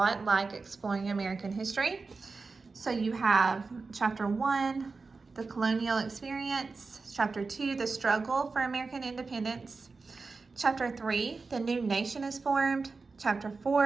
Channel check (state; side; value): quieter; left; 4.2 dB